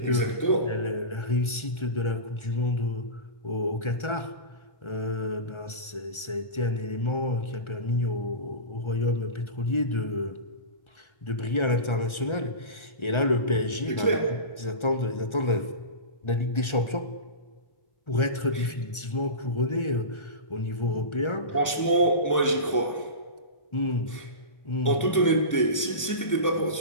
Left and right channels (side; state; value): right; late; 1.4 ms